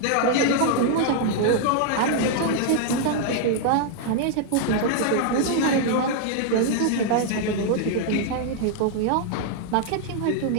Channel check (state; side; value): different; both; correlation 0.00